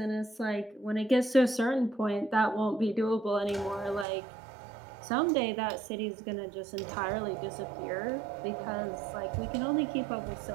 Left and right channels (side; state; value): left; drops out; at 4.0 s